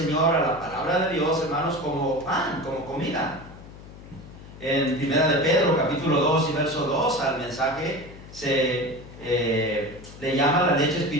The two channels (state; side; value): noise; left; hum, 17 dB below the sound